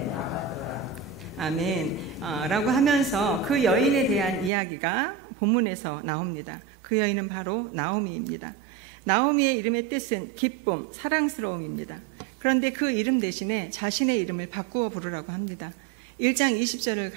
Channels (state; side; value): drops out; left; at 4.5 s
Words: 아멘 라고 하면서 그 여인에 대한 이야기가 본문에서 나옵니다. 그 여인은 바로 나오미입니다. 나오미의 이름의 뜻은 기쁨, 사랑스러움입니다. 그런데 그 이름 대신에 자신의 이름을 바꾸어 부르라고 합니다. 1장 20절을